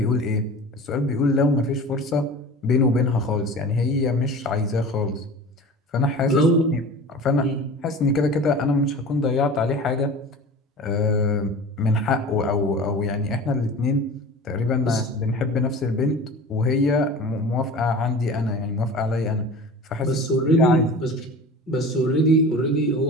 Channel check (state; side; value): normal; both; correlation 0.37